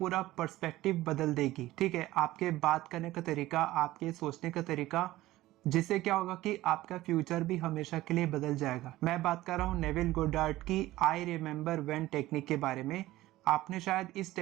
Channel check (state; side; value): quieter; left; 16.6 dB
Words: पर्सपेक्टिव बदल देगी। ठीक है, आपके बात करने का तरीका, आपके सोचने का तरीका, जिससे क्या होगा कि आपका फ्यूचर भी हमेशा के लिए बदल जाएगा। मैं बात कर रहा हूं नेविल गोडार्ड की आई रिमेम्बर व्हेन टेक्निक के बारे में। आपने शायद इस